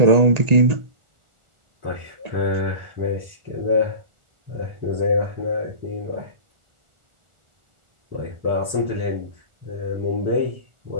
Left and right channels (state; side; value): late; left; 1.4 ms